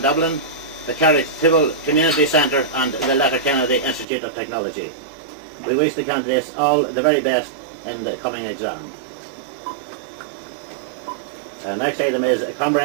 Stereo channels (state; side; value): drops out; left; at 4.0 s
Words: Dublin, the Carrick-Tibble Community Centre and the Letterkenny Institute of Technology. We wish the candidates all the very best in the coming exam. Next item is a